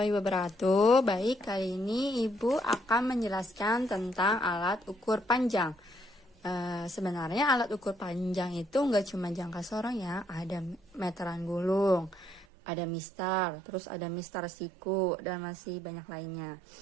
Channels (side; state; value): left; drops out; at 12.5 s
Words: wabarakatuh. Baik, kali ini Ibu akan menjelaskan tentang alat ukur panjang. Sebenarnya alat ukur panjang itu nggak cuma jangka sorong ya, ada meteran gulung, ada mistar, terus ada mistar siku, dan masih banyak lainnya.